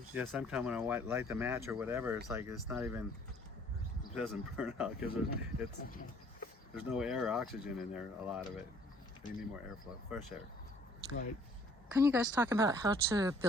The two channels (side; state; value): both; normal; correlation 0.58